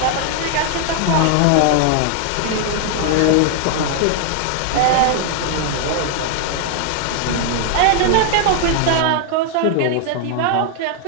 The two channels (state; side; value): different; both; correlation 0.00